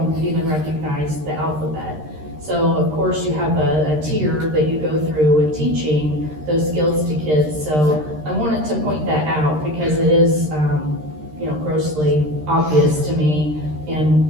even recognize the alphabet. So of course you have a tier that you go through with teaching those skills to kids. So I wanted to point that out because it is, grossly obvious to me. And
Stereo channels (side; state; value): left; late; 13 ms